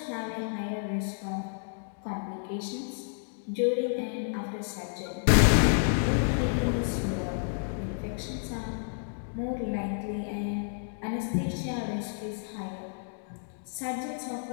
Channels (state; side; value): silent; right; digital silence